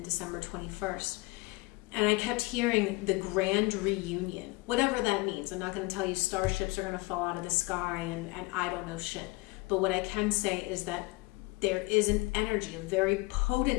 December 21st, and I kept hearing the grand reunion, whatever that means. I'm not going to tell you starships are going to fall out of the sky and I don't know shit. But what I can say is that there is an energy, a very potent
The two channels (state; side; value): quieter; right; 24.0 dB